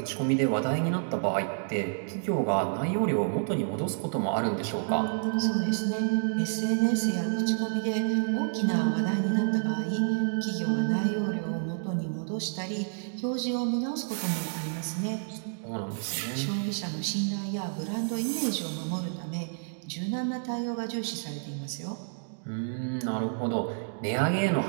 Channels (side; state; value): left; silent; digital silence